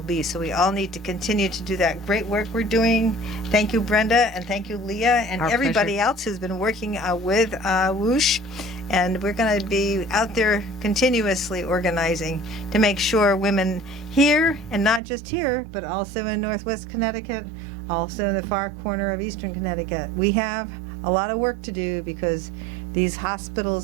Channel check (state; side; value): drops out; left; at 15.0 s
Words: be. So we all need to continue to do that great work we're doing. Thank you, Brenda, and thank you, Leah, and everybody else who's been working with Whoosh. And we're going to be out there continuously organizing to make sure women here, and not just here, but also in Northwest Connecticut, also in the far corner of Eastern Connecticut, we have a lot of work to do because these